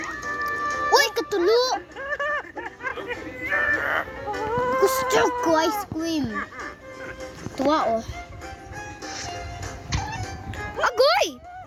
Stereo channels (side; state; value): both; identical; correlation 1.00